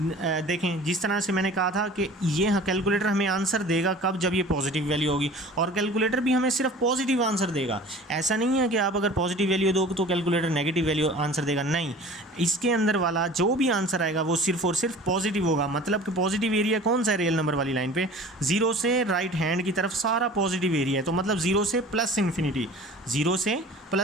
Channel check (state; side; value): normal; both; correlation 0.43